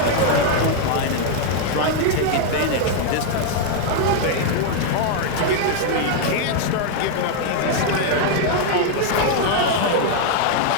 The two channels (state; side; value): different; both; correlation 0.00